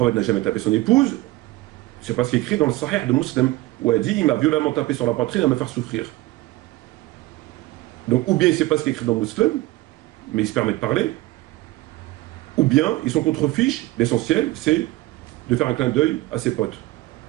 n'a jamais tapé son épouse, c'est pas ce qui est écrit dans le Sahih de Muslim, où elle dit « Il m'a violemment tapé sur la poitrine à me faire souffrir. » Donc, ou bien c'est pas ce qui est écrit dans le Muslim, mais il se permet de parler, ou bien ils sont contre-fiches, l'essentiel, c'est de faire un clin d'œil à ses potes.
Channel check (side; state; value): left; quieter; 18.4 dB